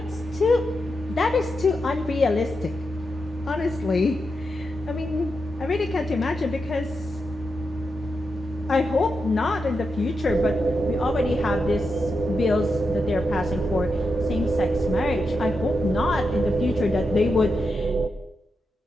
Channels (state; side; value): normal; both; correlation 0.86